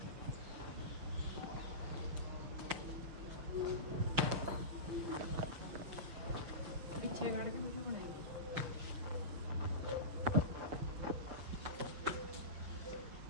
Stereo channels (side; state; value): left; late; 6.4 ms